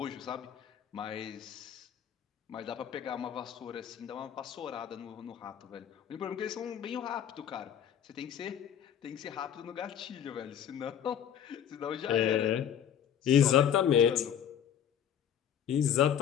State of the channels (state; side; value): quieter; right; 9.2 dB